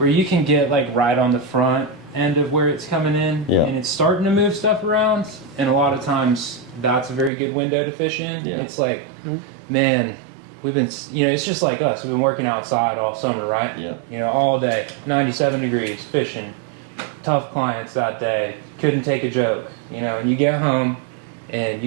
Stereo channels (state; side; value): drops out; left; at 7.3 s